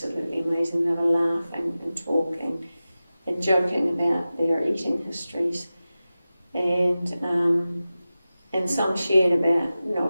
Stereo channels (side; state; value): both; inverted; correlation -0.95